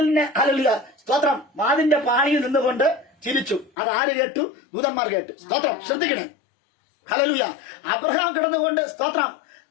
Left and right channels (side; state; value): right; drops out; at 3.7 s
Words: ഹല്ലേലൂയ സ്തോത്രം വാതിലിന്റെ പാണിയിൽ നിന്നുകൊണ്ട് ചിരിച്ചു. അത് ആര് കേട്ടു? ദൂതന്മാർ കേട്ടു. സ്തോത്രം. ശ്രദ്ധിക്കണേ. ഹല്ലേലൂയ. അബ്രഹാം കിടന്നുകൊണ്ട് സ്തോത്രം